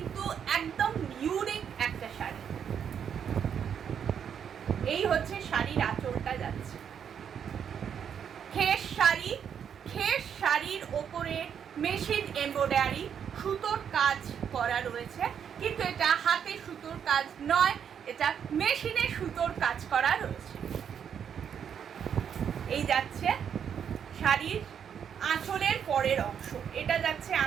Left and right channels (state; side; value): quieter; left; 8.0 dB